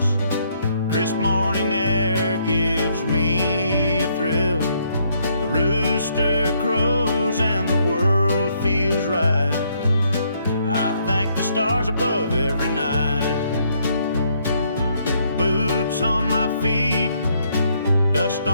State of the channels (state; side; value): inverted; both; correlation -0.71